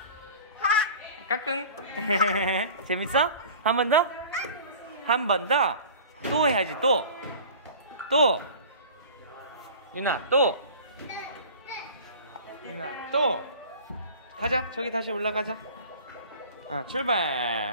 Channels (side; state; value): both; inverted; correlation -0.41